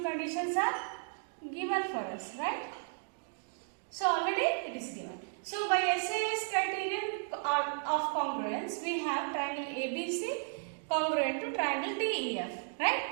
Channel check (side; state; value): left; silent; 55 dB below the other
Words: conditions are given for us, right? So already it is given. So by SAS criterion of congruence, we have triangle ABC congruent to triangle DEF, right?